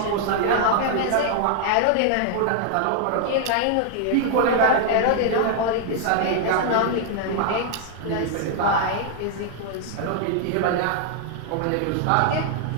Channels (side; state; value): both; different; correlation 0.00